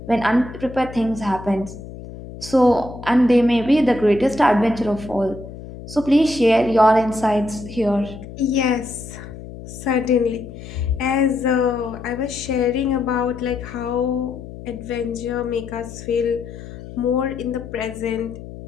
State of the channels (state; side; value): noise; left; hum, 13 dB below the sound